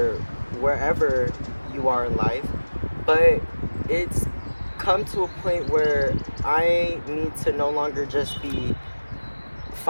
wherever you are in life. But it's come to a point where I need to no longer just be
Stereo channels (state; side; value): inverted; both; correlation -1.00